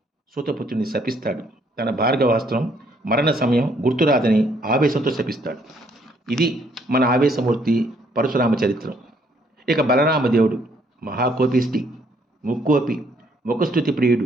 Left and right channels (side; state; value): both; normal; correlation 0.67